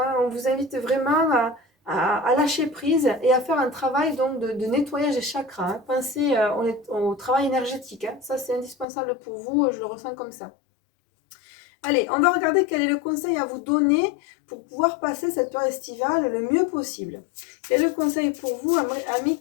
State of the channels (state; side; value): drops out; right; at 8.8 s